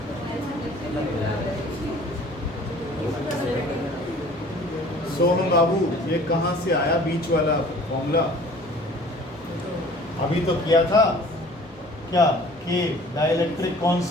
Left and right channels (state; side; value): noise; right; hum, 26 dB below the sound